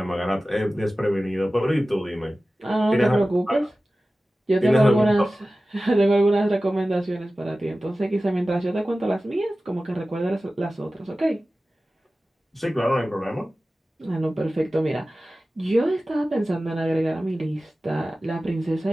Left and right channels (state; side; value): normal; both; correlation 0.96